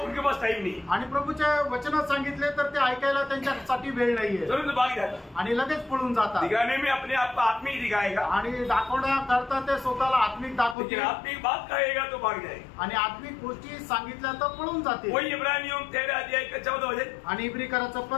उनके पास टाइम नहीं, आणि प्रभूच्या वचनात सांगितले तर ते ऐकायला त्यांच्यासाठी वेळ नाहीये तुरंत भाग जाता, आणि लगेच पळून जातात। दिखाने में अपने आप को आत्मिक दिखाएगा, आणि दाखवण्याकरता ते स्वतःला आत्मिक दाखवते, लेकिन आत्मिक बात कहेगा तो भाग जाएगा। आणि आत्मिक गोष्टी सांगितल्या तर पळून जाते। वही इब्रानियों 13 अध्याय का 14 वचन, आणि इब्रिकराचं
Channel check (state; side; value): drops out; right; at 10.8 s